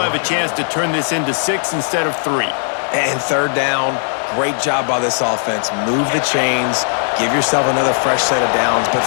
a chance to turn this into 6 instead of 3. And 3rd down, great job by this offense. Move the chains, give yourself another fresh set of downs, but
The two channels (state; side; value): silent; right; 60 dB below the other